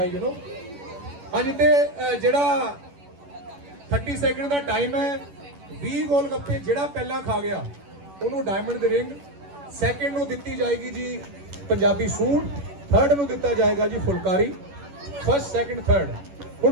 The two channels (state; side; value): late; left; 11 ms